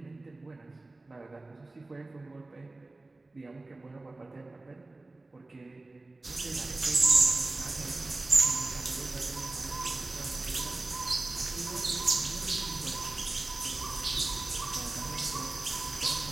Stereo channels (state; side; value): quieter; left; 3.1 dB